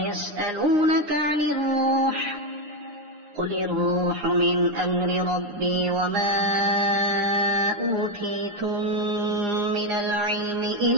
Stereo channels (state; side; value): late; left; 9.7 ms